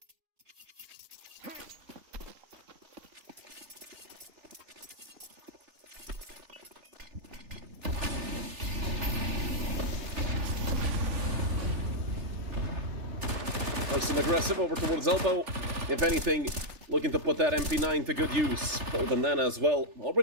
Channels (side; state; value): left; late; 3.4 ms